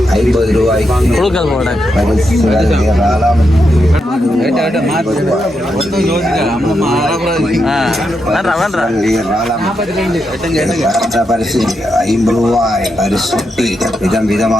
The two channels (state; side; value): normal; both; correlation 0.84